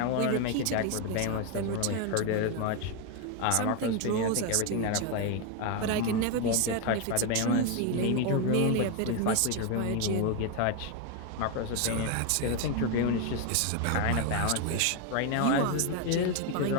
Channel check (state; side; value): different; both; correlation 0.01